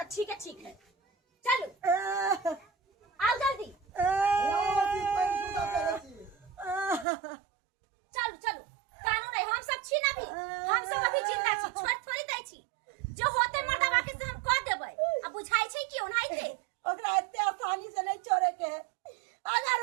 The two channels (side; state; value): left; drops out; at 7.1 s